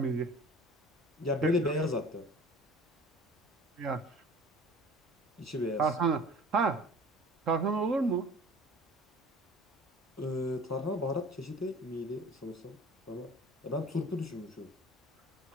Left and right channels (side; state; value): both; normal; correlation 0.45